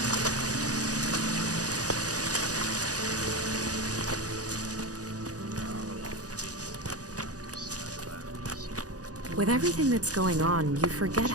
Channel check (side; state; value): left; late; 0.67 ms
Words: With everything that's going on, you forget